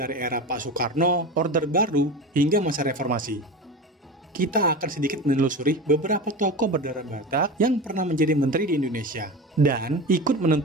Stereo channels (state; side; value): normal; both; correlation 0.28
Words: era Pak Soekarno, Orde Baru, hingga masa reformasi. Kita akan sedikit menelusuri beberapa tokoh berdarah Batak yang pernah menjadi menteri di Indonesia dan ikut